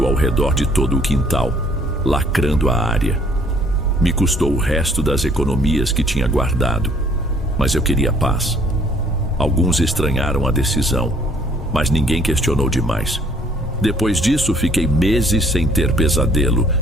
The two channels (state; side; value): normal; both; correlation 0.60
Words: ao redor de todo o quintal, lacrando a área. Me custou o resto das economias que tinha guardado, mas eu queria paz. Alguns estranharam a decisão, mas ninguém questionou demais. Depois disso, fiquei meses sem ter pesadelo,